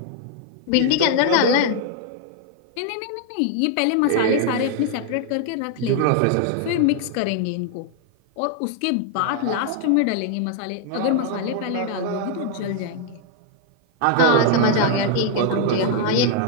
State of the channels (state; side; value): different; both; correlation 0.00